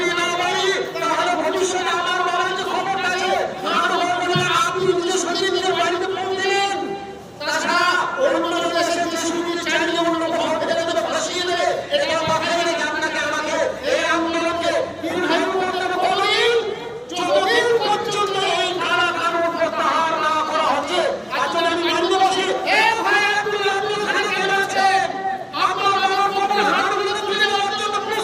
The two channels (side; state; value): both; identical; correlation 1.00